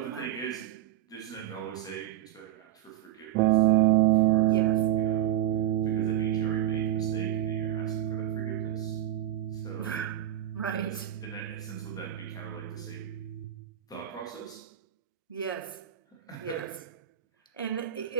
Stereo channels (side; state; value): left; quieter; 12.2 dB